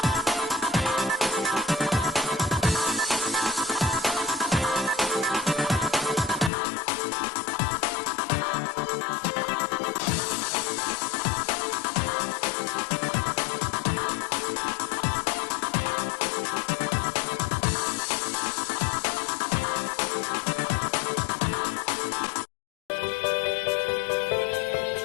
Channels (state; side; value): drops out; right; at 6.5 s